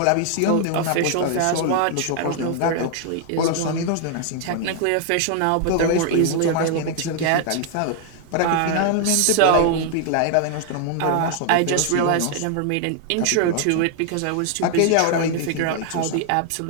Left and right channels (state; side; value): different; both; correlation 0.00